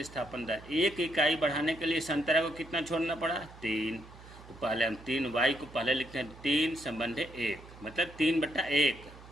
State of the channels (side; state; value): right; noise; hum, 19 dB below the sound